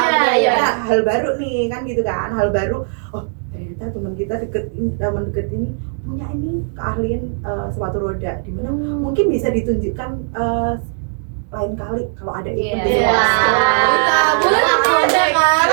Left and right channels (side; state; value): left; silent; digital silence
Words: Iya. Nah, hal baru nih kan gitu kan, hal baru. Oh, ternyata teman kita teman deket ini punya ini keahlian sepatu roda, di mana mungkin bisa ditunjukkan lain kali kalau ada event Iya. di Wah. Boleh ada kan?